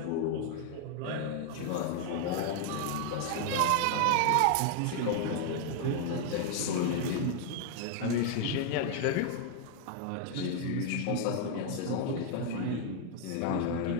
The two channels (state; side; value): different; both; correlation 0.00